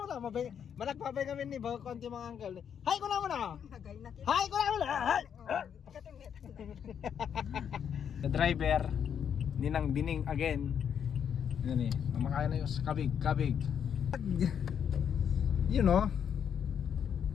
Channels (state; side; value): quieter; right; 8.1 dB